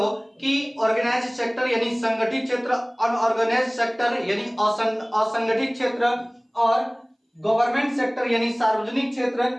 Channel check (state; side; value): identical; both; correlation 1.00